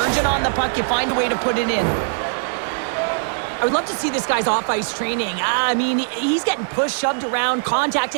urgent on the puck, you find a way to put it in. I would love to see this guy's off-ice training. I mean, he's getting pushed, shoved around,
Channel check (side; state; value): left; silent; digital silence